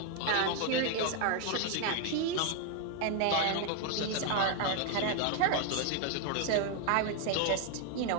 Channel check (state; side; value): different; both; correlation 0.00